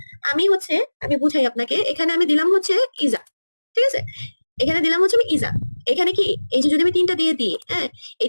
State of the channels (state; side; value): inverted; both; correlation -1.00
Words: আমি বুঝাই আপনাকে, এখানে আমি দিলাম হচ্ছে ইজা, ঠিক আছে, এখানে দিলাম হচ্ছে আমি ইজা। এখানে কি, এই যে যদি আমি তিনটা দিয়ে দিই, হ্যাঁ,